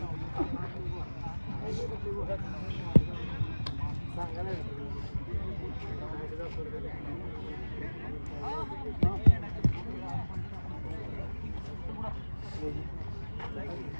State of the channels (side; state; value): both; inverted; correlation -1.00